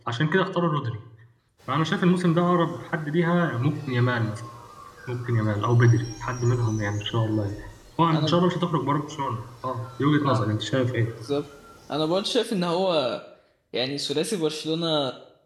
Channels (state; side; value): identical; both; correlation 1.00